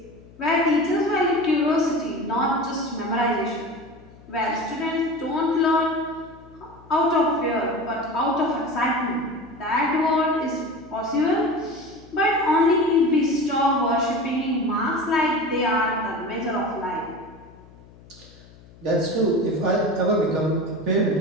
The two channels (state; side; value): noise; left; hum, 23 dB below the sound